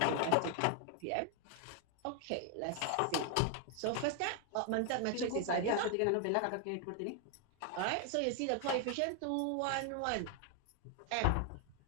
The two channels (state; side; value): different; both; correlation 0.00